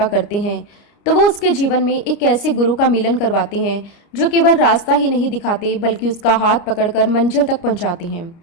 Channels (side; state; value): right; late; 29 ms